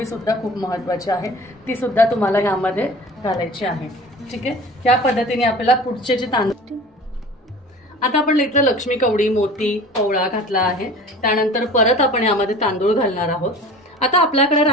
सुद्धा खूप महत्त्वाची आहे, ती सुद्धा तुम्हाला ह्यामध्ये घालायची आहे. ठीक आहे, या पद्धतीने आपल्याला पुढचे जे तांदूळ, आता आपण इथं लक्ष्मी कवडी, मोती, पवळा घातला आहे. त्यानंतर परत आपण यामध्ये तांदूळ घालणार आहोत. आता आपल्याकडे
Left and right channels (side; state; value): both; normal; correlation 0.41